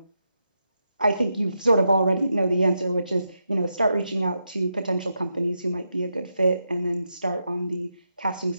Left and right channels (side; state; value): both; inverted; correlation -0.85